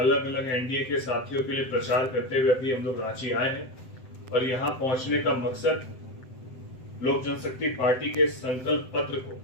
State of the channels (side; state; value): right; late; 7.8 ms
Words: अलग एनडीए के साथियों के लिए प्रचार करते हुए अभी हम लोग रांची आए हैं। और यहाँ पहुंचने का मकसद लोक जनशक्ति पार्टी के संकल्प पत्र को